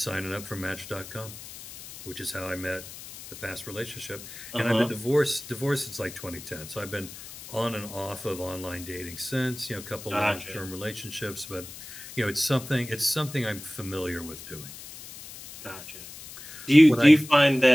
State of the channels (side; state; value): left; noise; hiss, 14 dB below the sound